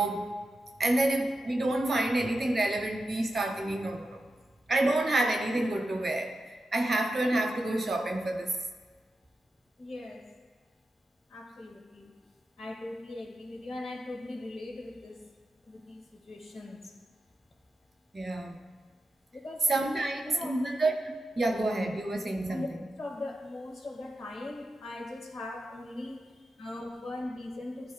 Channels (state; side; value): normal; both; correlation 0.90